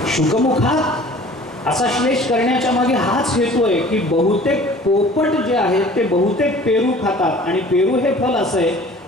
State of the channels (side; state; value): both; normal; correlation 0.47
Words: शुकमुखात असा श्लेष करण्याच्या मागे हाच हेतू आहे की बहुतेक पोपट जे आहेत ते बहुतेक पेरू खातात आणि पेरू हे फल असं आहे